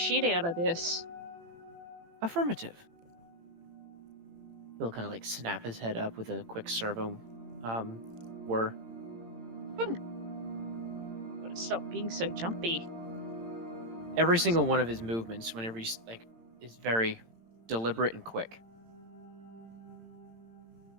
out of this. Affirmative. He'll kind of like snap his head up with a quick servo whir. Gotta stop being so jumpy. Every single one of his movements, whenever he's like, is very deliberate and quick.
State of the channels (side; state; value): left; late; 18 ms